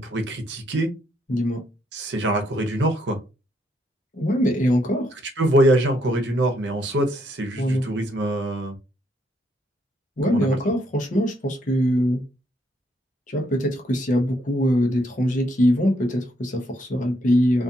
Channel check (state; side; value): normal; both; correlation 0.74